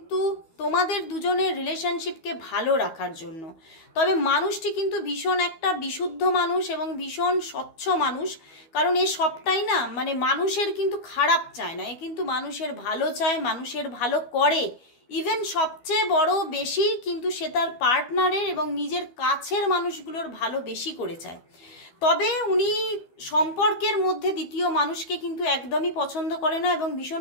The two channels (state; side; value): late; right; 12 ms